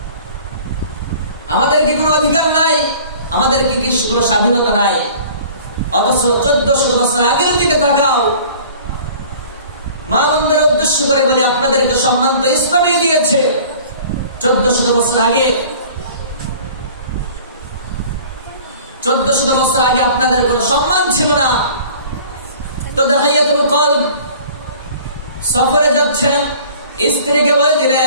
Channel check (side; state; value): both; inverted; correlation -0.47